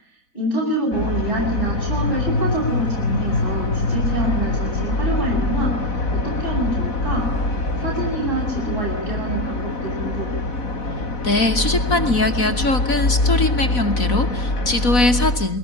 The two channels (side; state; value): right; late; 4.1 ms